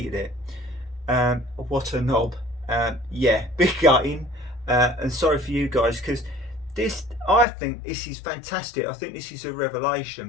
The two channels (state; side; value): drops out; right; at 7.5 s